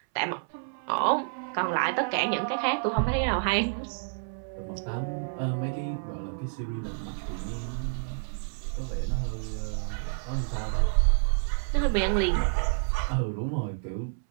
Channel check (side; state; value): left; silent; 59 dB below the other